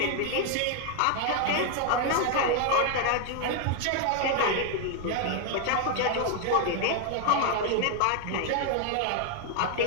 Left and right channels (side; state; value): both; different; correlation 0.00